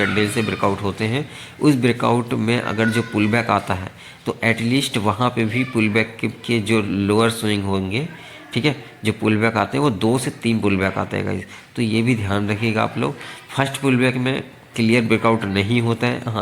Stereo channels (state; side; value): identical; both; correlation 1.00